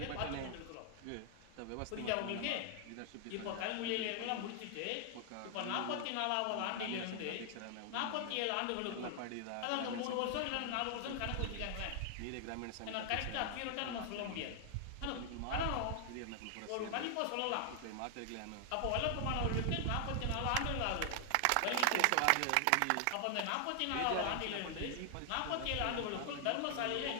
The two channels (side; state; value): both; different; correlation 0.00